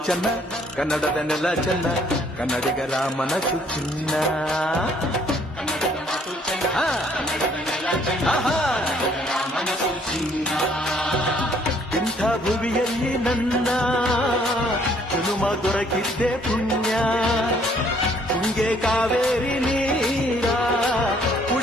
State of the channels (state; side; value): normal; both; correlation 0.63